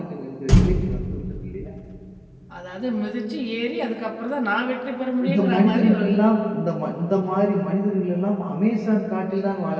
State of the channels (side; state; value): both; identical; correlation 1.00